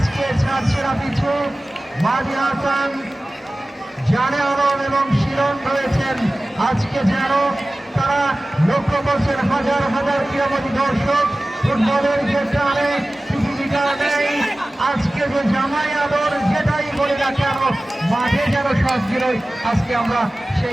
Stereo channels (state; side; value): normal; both; correlation 0.97